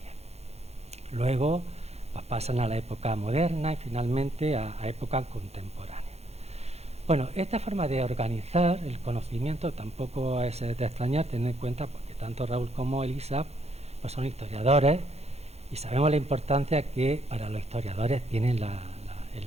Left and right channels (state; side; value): late; left; 0.31 ms